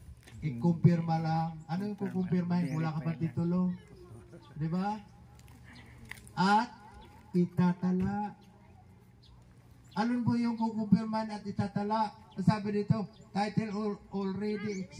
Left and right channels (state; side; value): identical; both; correlation 1.00